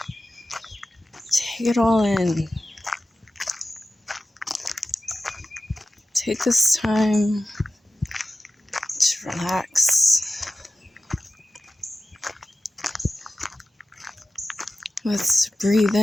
Take it all in. Take this time to relax. Let's breathe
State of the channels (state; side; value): normal; both; correlation 0.94